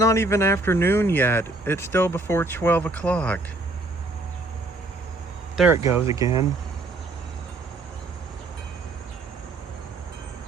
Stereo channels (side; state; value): left; quieter; 3.1 dB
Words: even afternoon yet. It's still before 12 o'clock. There it goes again.